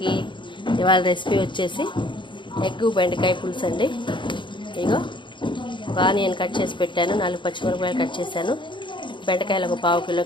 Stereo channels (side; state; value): right; late; 0.23 ms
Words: ఇవాళ రెసిపీ వచ్చేసి ఎగ్గు బెండకాయ పులుసు అండి. ఇగో ఒక ఆనియన్ కట్ చేసి పెట్టాను, 4 పచ్చిమిరపకాయలు కట్ చేశాను, బెండకాయలు ఒక 1/2 కిలో